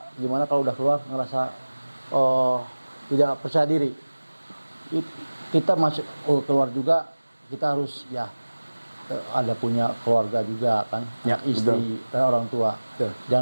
gimana kalau udah keluar ngerasa tidak percaya diri. Kita masuk keluar juga kita harus ya ada punya keluarga juga kan, istri dan orang tua.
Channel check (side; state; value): both; inverted; correlation -1.00